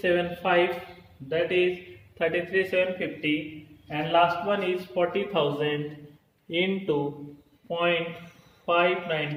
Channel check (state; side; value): identical; both; correlation 1.00